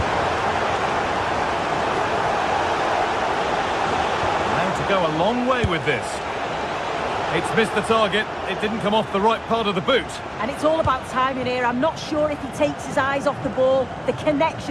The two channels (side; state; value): both; identical; correlation 1.00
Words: Go a long way with this. It's missed the target. It didn't come off the right part of the boot. And it's all about timing here. I'm not sure if he takes his eyes off the ball. The